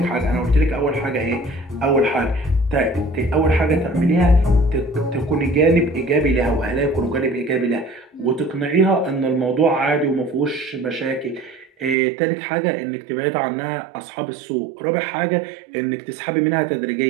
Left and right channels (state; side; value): drops out; left; at 12.0 s